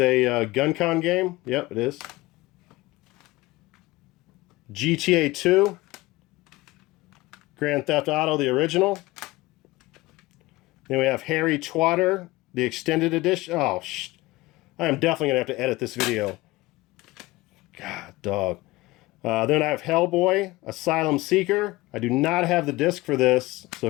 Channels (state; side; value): quieter; right; 20.0 dB